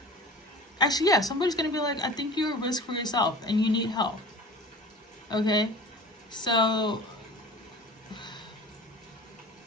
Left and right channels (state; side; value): normal; both; correlation 0.39